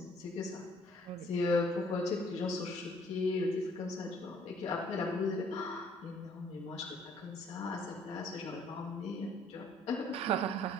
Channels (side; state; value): both; normal; correlation 0.60